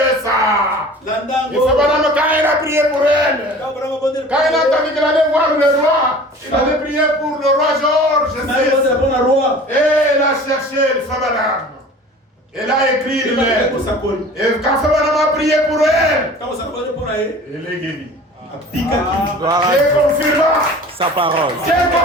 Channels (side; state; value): both; normal; correlation 0.43